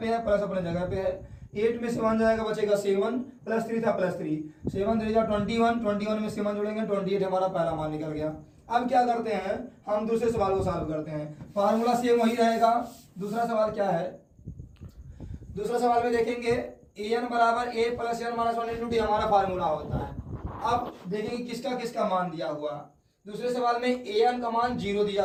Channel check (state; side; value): identical; both; correlation 1.00